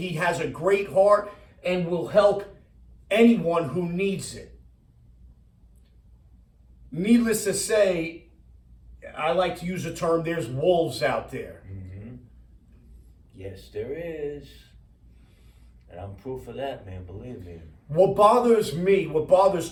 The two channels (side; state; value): both; identical; correlation 1.00